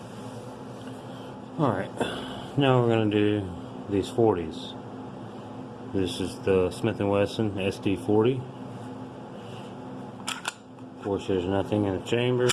Alright, now we're going to do these 40s. This is the Smith & Wesson SD40. Of course, there's nothing in the chamber.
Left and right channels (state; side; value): identical; both; correlation 1.00